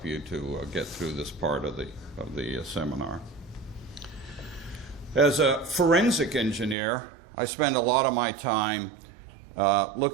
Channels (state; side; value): drops out; left; at 6.8 s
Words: you to get through this part of the seminar. As a forensic engineer, I spend a lot of my time